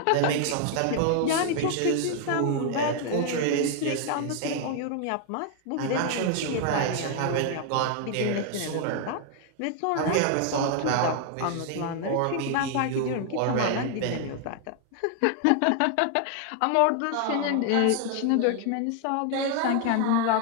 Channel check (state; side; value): different; both; correlation 0.00